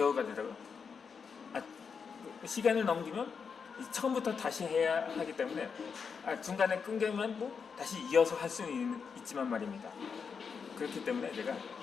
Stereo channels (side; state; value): right; quieter; 6.0 dB